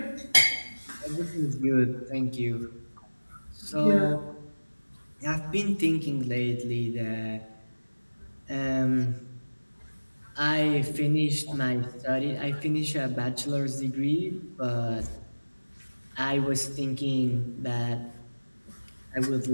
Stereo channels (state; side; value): inverted; both; correlation -1.00